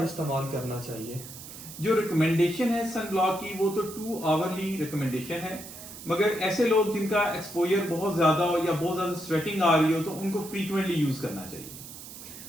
इस्तेमाल करना चाहिए? जो रिकमेंडेशन है सन ब्लॉक की वो तो 2 आवरली रिकमेंडेशन है, मगर ऐसे लोग जिनका एक्सपोजर बहुत ज्यादा हो या बहुत ज्यादा स्वेटिंग आ रही हो तो उनको फ्रीक्वेंटली यूज करना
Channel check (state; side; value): noise; right; hiss, 14 dB below the sound